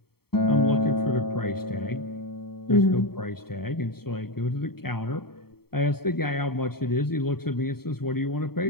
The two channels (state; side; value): late; right; 0.95 ms